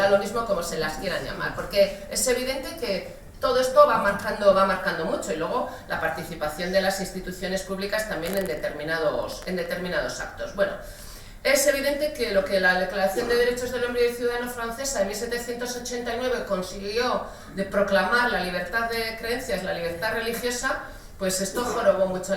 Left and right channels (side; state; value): both; identical; correlation 1.00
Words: lo mismo como se las quieran llamar, porque es evidente que todo esto va marcando mucho, y luego la participación de las instituciones públicas también en determinados actos. Bueno, es evidente que lo que la Declaración de Derechos del Hombre y del Ciudadano francesa en 1789 consiguió de proclamar la libertad de creencias, la libertad religiosa, pues esto jorobó mucho a